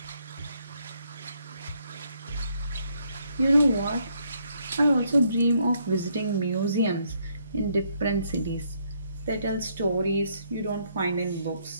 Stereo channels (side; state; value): both; inverted; correlation -0.72